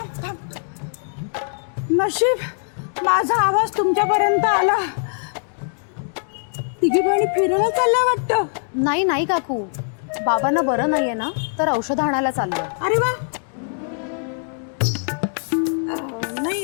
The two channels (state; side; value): silent; right; digital silence